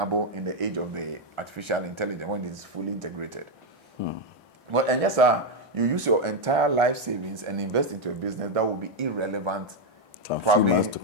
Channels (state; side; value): normal; both; correlation 0.03